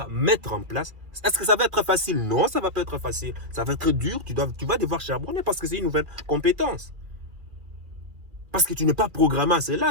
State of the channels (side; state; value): left; late; 2.3 ms